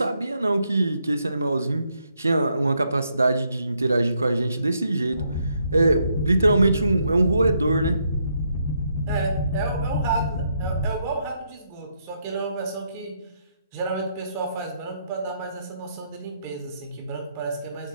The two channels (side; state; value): both; inverted; correlation -0.76